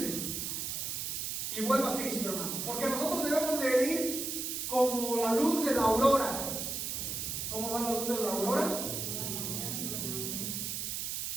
y vuelva a Cristo, hermano, porque nosotros debemos de ir como la luz de la aurora. ¿Cómo va la luz de la aurora?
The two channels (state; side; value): noise; right; hiss, 3 dB below the sound